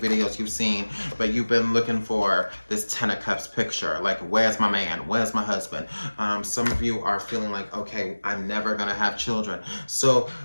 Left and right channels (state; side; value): inverted; both; correlation -1.00